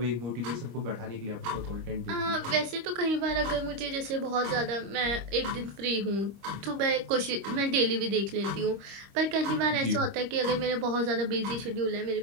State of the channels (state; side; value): late; left; 25 ms